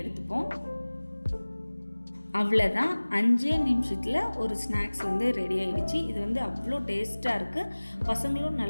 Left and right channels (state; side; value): inverted; both; correlation -1.00